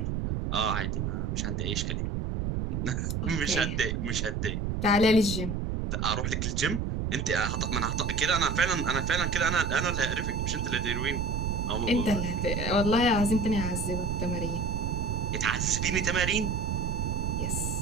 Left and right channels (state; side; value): noise; right; rumble, 1 dB below the sound